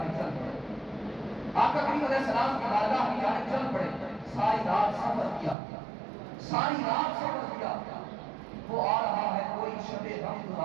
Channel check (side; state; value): left; drops out; at 5.6 s